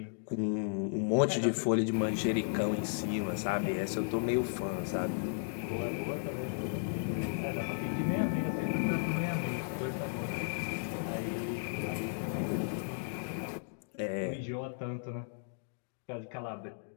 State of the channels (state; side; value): silent; right; digital silence